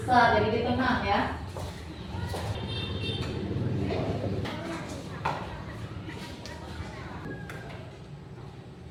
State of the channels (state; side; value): identical; both; correlation 1.00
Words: jadi di tengah ya.